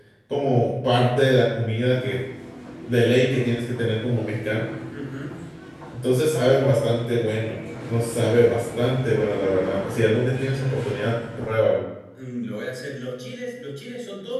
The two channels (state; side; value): identical; both; correlation 1.00